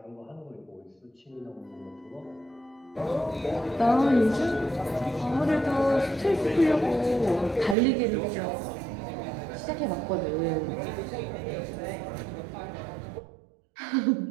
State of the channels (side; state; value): left; drops out; at 7.8 s